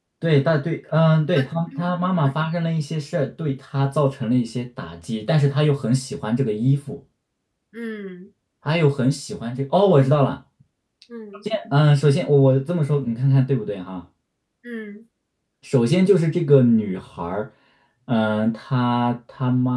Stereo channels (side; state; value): both; identical; correlation 1.00